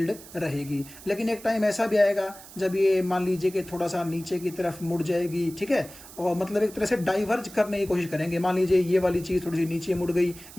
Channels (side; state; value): right; noise; hiss, 18 dB below the sound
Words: रहेगी। लेकिन एक टाइम ऐसा भी आएगा जब ये मान लीजिए कि थोड़ा सा नीचे की तरफ मुड़ जाएगी, ठीक है, और मतलब एक तरह से डाइवर्ज करने की कोशिश करेंगे। मान लीजिए ये वाली चीज थोड़ी सी नीचे मुड़ गई,